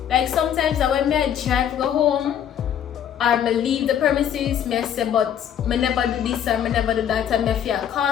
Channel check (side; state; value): right; quieter; 9.5 dB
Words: Like sometimes when I drive go home or I leave the premises, I say, but I never do this or I never do that, and I feel